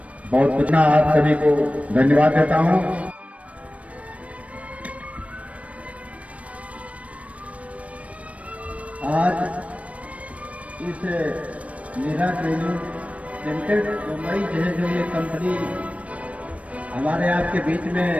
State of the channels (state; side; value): late; left; 0.065 ms